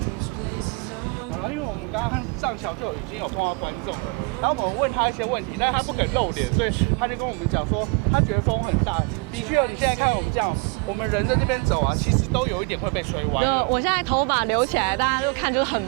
好了，因為我們剛剛上橋就已經有碰到觀眾了，然後我們問他一些問題，但是他不肯露臉，所以他就跟我們講說，他覺得風很大。的確哦，你現在看我們這樣，我們人在這邊走啊，其實都有一點會被吹歪了。我現在頭髮留起來，大家就看就是很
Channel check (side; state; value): left; quieter; 29.7 dB